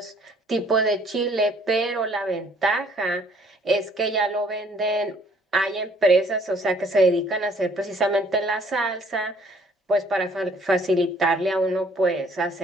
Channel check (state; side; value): normal; both; correlation 0.60